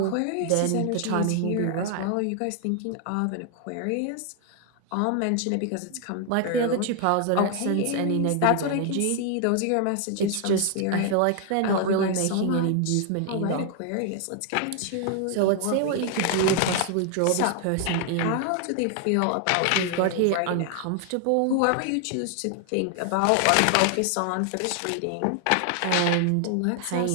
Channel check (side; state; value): both; different; correlation 0.00